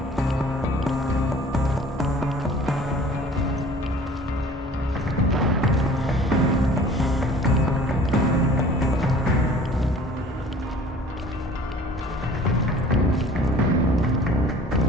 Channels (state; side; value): normal; both; correlation 0.48